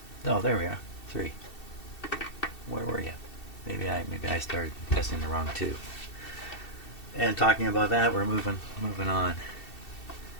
Oh, there we are. 3. Where were you? Maybe I started testing the wrong tube. And talking about that, we're moving on.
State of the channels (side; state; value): right; late; 2.7 ms